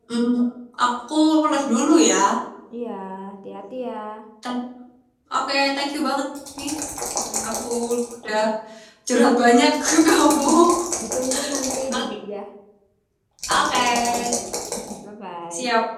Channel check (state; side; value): identical; both; correlation 1.00